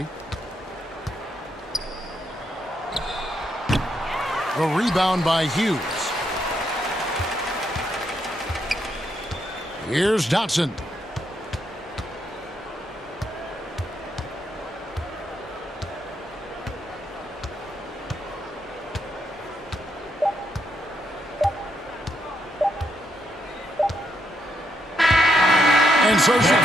The rebound by Hughes. Here's Dotson. And so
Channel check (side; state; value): both; normal; correlation 0.77